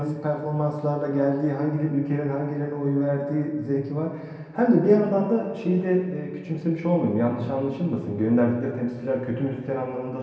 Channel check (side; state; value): both; identical; correlation 1.00